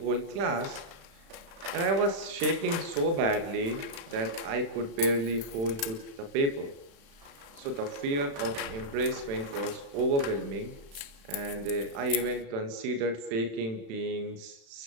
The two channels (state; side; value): late; left; 35 ms